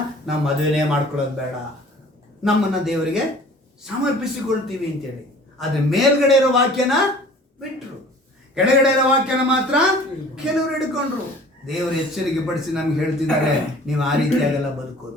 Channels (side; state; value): both; normal; correlation 0.48